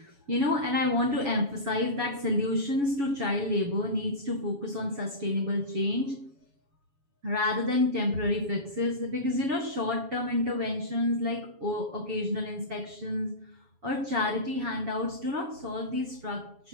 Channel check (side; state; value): left; late; 7.2 ms